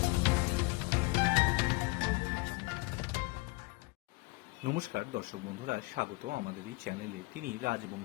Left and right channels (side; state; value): right; quieter; 24.7 dB